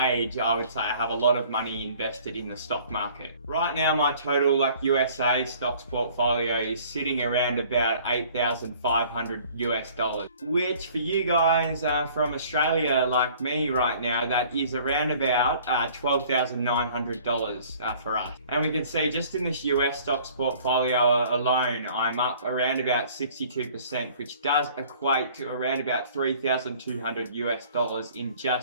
age, I would say I have a lot of money invested in the stock market. Right now, my total USA stocks portfolio is sitting around about 8,500 US dollars, which for you guys from Australia like me right now, that is around about $12,900 for us. And we can see just in this US stocks portfolio alone, I'm up around about 62%, which does equate to around about 3,200 US dollars in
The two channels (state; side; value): inverted; both; correlation -0.53